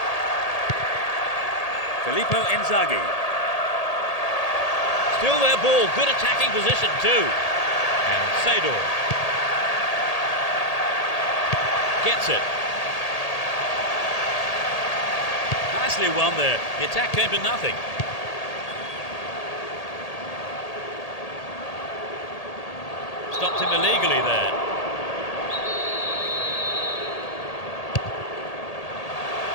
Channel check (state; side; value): late; right; 1.8 ms